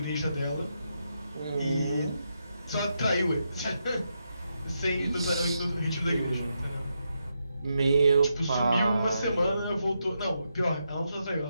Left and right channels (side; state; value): both; inverted; correlation -0.83